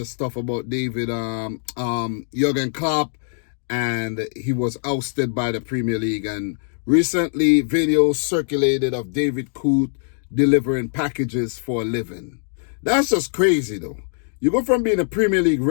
stuff about Jurgen Klopp, and he was ousted by the Premier League. And recently, videos circulated of David Coote delivering packages for a living. That's just crazy, though. You go from being a Premier League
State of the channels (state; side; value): silent; right; digital silence